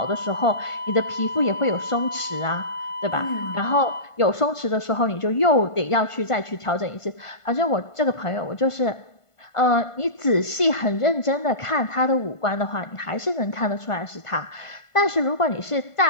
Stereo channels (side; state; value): right; late; 1.5 ms